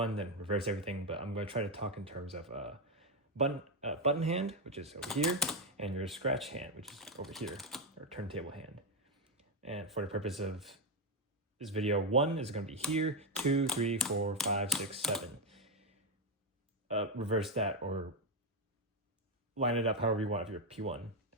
then reverse everything, but I'm gonna try to talk in terms of button hand, which is over here, and your scratch hand, which is over here, or turntable hand. And for the purpose of this video, 1 is going to be here, 2, 3, 4, 5, 6, 7. Reverse that or line it up however you want if you're P1.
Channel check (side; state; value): both; normal; correlation 0.06